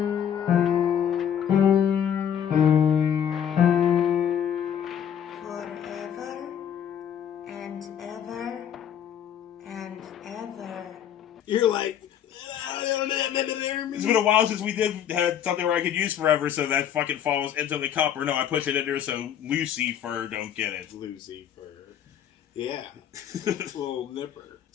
Forever and ever and ever. You're like. It's been a while since we had something where I could use forever, so that fucking falls into the cup. Or no, I push it in there so Lucifer don't get it. Lucifer. Yeah. Little nipper.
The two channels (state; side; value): quieter; right; 9.3 dB